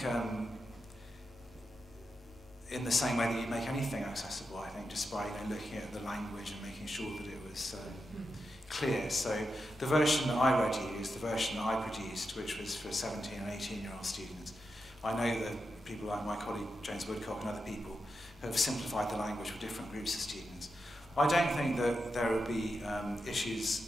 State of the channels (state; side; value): normal; both; correlation 0.87